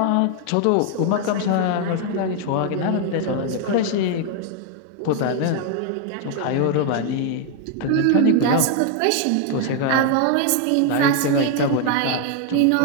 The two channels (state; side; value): different; both; correlation 0.00